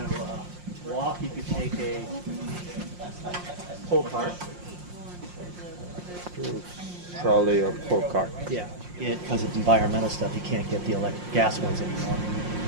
walk, you can take a pull cart. Trolley or pull cart. Yeah. Because of environmental stuff, you can't get the gas ones anymore.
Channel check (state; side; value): late; left; 5.6 ms